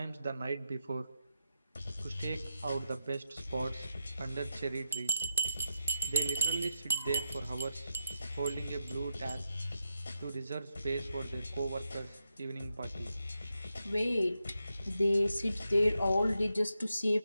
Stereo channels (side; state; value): both; inverted; correlation -0.85